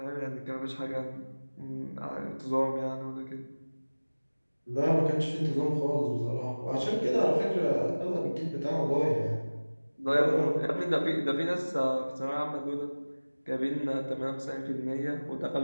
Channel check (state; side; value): inverted; both; correlation -1.00